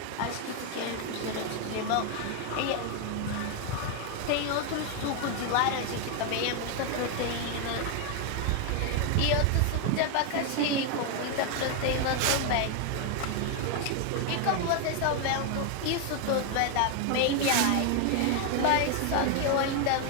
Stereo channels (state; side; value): different; both; correlation 0.01